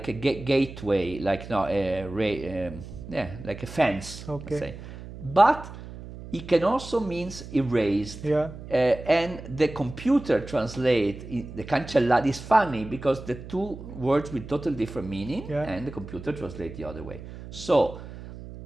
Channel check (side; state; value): right; noise; hum, 13 dB below the sound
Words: a gateway, like like a fence, let's say. But it can also means erased. And the computer translate the cancellata. Is funny because the two words with totally different meaning, and the computer translate the other way. So